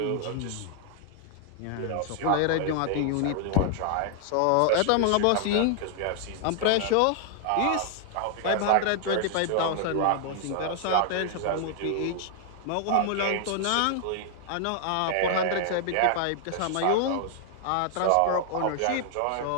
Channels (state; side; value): different; both; correlation 0.00